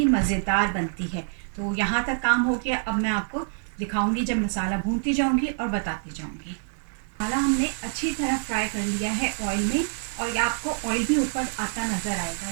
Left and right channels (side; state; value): left; silent; 61 dB below the other